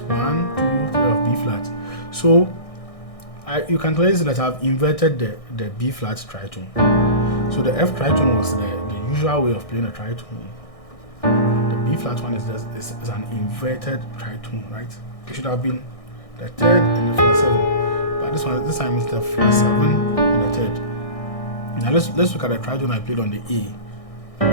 1, 2, 3 of B flat. So you can clearly see that I've inverted the B flat tritone. So the F tritone was the usual way of playing a tritone. The B flat one is an inverted tritone, right? It should have been the 3rd and the flat 7, but this time it's the flat 7 and the 3rd. Now let's look at the tritone I played on the A.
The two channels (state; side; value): late; right; 1.6 ms